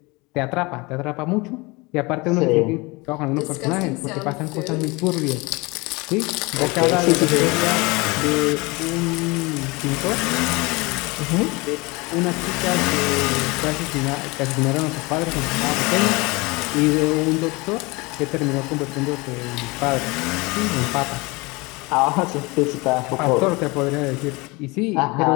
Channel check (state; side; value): quieter; right; 25.1 dB